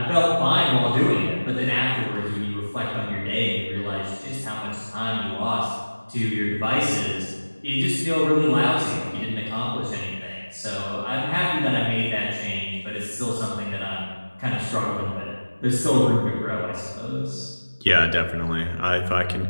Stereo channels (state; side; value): inverted; both; correlation -1.00